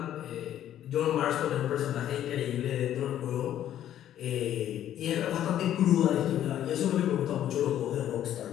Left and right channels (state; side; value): quieter; right; 11.4 dB